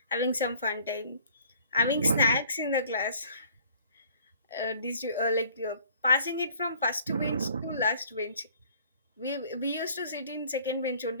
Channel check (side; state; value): both; inverted; correlation -0.54